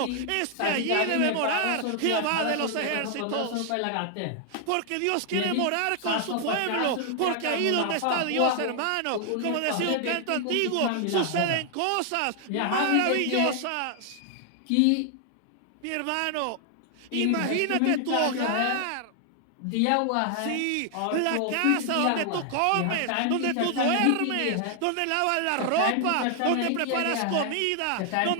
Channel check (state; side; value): different; both; correlation 0.00